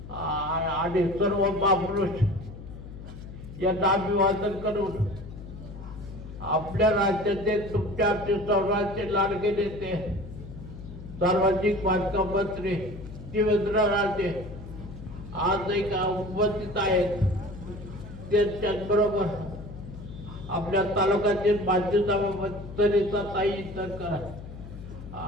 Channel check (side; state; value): left; noise; hum, 13 dB below the sound